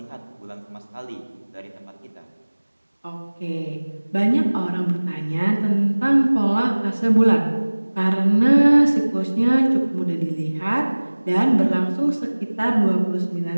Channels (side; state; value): both; inverted; correlation -1.00